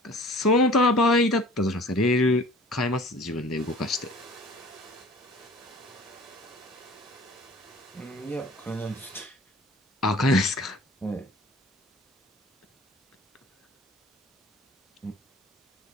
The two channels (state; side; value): normal; both; correlation 0.46